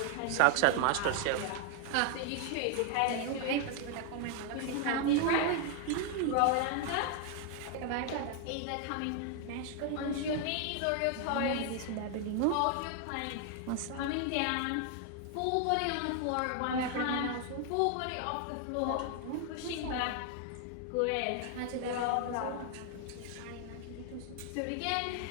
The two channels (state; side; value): different; both; correlation 0.00